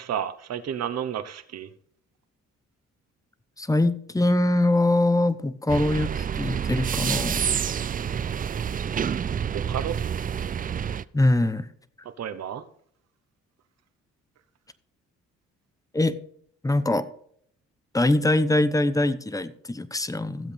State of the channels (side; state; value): both; normal; correlation 0.77